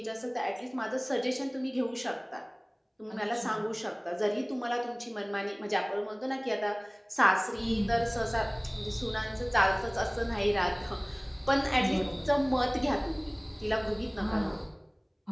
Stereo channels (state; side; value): identical; both; correlation 1.00